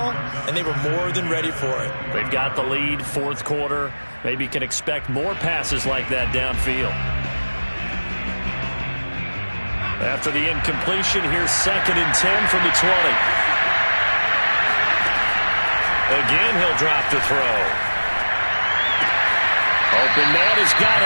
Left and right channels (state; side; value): inverted; both; correlation -1.00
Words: and they were more than ready for it. They've got the lead, 4th quarter. Maybe can expect more passes like that downfield. After the incompletion, here's 2nd and 10 from the 20. Again, he'll drop to throw. Open man has got